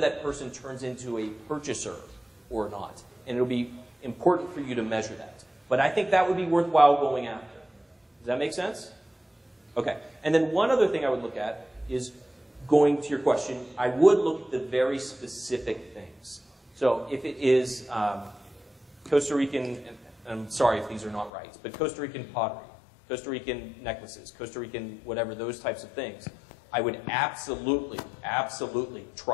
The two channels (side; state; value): right; drops out; at 21.3 s